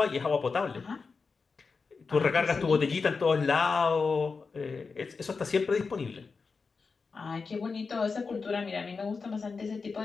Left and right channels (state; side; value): quieter; right; 4.7 dB